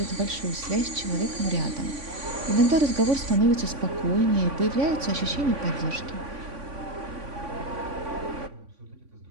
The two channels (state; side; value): late; left; 3.5 ms